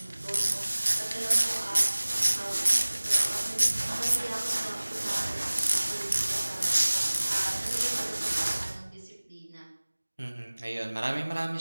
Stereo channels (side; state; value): both; inverted; correlation -1.00